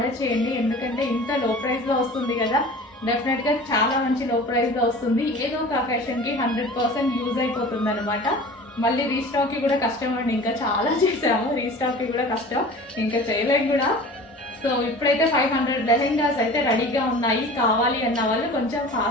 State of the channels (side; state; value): both; normal; correlation 0.40